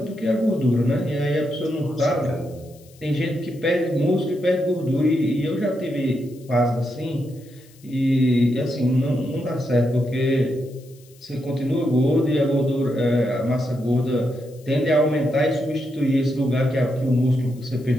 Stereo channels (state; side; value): noise; left; hiss, 27 dB below the sound